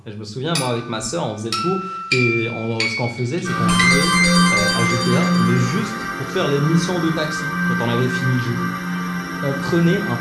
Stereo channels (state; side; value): identical; both; correlation 1.00